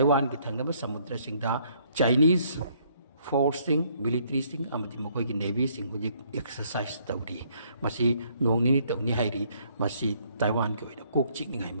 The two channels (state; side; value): inverted; both; correlation -0.66